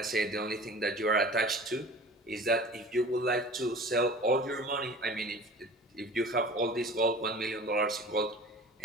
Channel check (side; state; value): both; normal; correlation 0.41